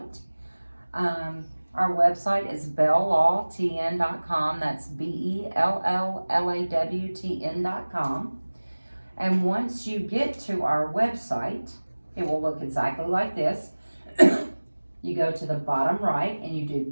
Our website is belllawtn.com. That's BELLLAWTN.com. And once you get to our website, it will look exactly like this. You go to the bottom right and you do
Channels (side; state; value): both; inverted; correlation -1.00